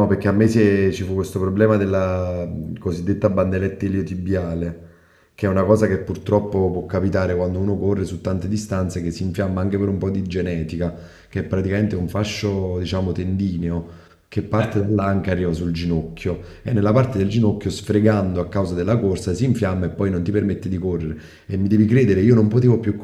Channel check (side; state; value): both; identical; correlation 1.00